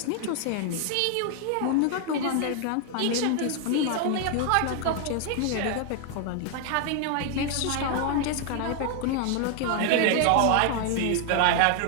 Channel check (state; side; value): different; both; correlation 0.00